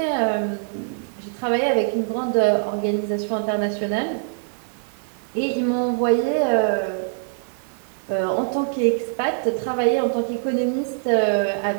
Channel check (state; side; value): silent; left; digital silence